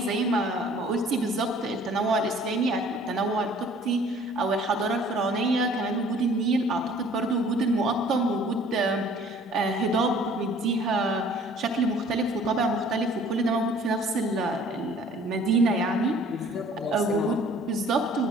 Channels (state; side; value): normal; both; correlation 0.53